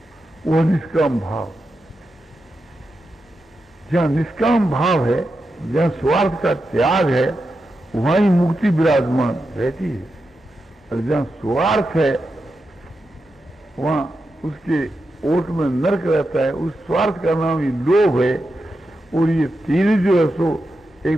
वो निष्काम भाव। जहाँ निष्काम भाव है, जहाँ स्वार्थ का त्याग है, वहां ही मुक्ति विराजमान रहती है। और जहाँ स्वार्थ है वहां उसके ओट में नरक रहता है। उस स्वार्थ का नाम ही लोभ है। और ये तीन जो है सो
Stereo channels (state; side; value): normal; both; correlation 0.88